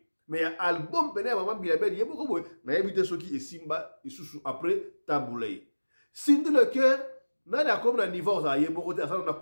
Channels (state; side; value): inverted; both; correlation -1.00